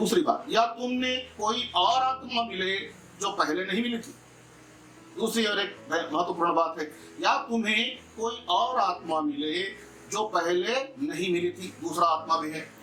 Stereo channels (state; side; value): identical; both; correlation 1.00